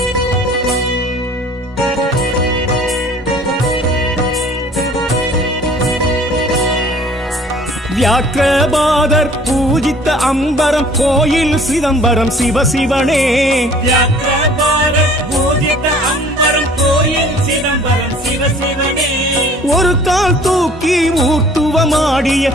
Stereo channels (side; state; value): both; normal; correlation 0.52